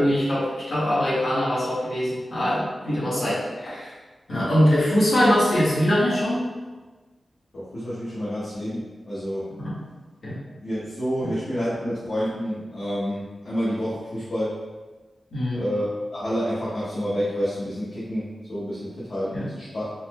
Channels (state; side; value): normal; both; correlation 0.93